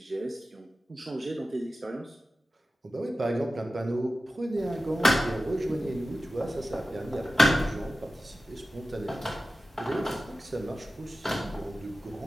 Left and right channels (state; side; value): normal; both; correlation 0.95